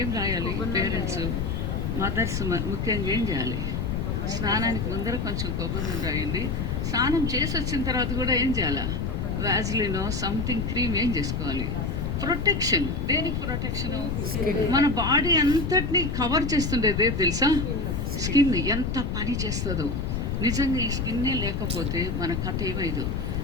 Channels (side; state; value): left; noise; rumble, 1 dB below the sound